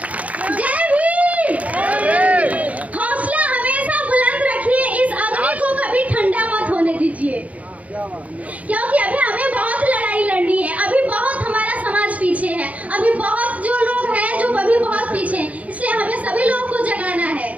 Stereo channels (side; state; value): left; late; 0.069 ms